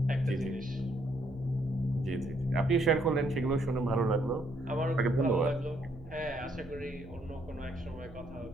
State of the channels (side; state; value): right; noise; hum, 19 dB below the sound